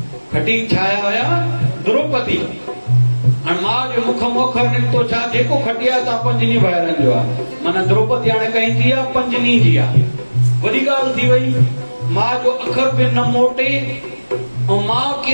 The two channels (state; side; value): inverted; both; correlation -1.00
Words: खटी छाया हुया? द्रौपदी। हाणे मां जो मुख मोखर निकितो छा? जेको खटी आहे तव्हां 5 ॾींहं ॿाहिरनि जो आहे। माना द्रौपदी हाणे कहीं थी आहे 5 ॾींहं जी आहे। वॾी ॻाल्हि थी वई। मां जो अखर बि न मोटे, ऐं मां